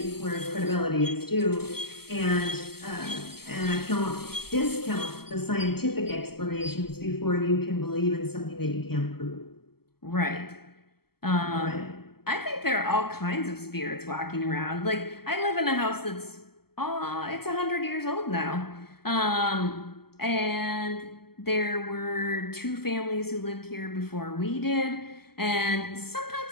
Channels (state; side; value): late; right; 0.96 ms